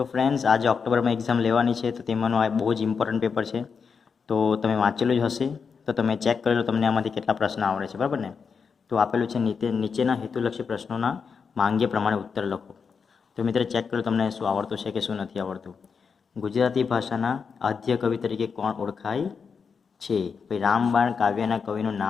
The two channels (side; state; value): right; quieter; 5.8 dB